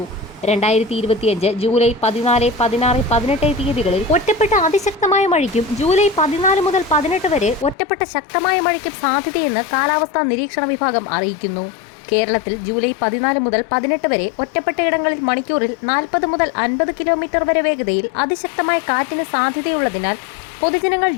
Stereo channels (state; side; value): drops out; right; at 7.8 s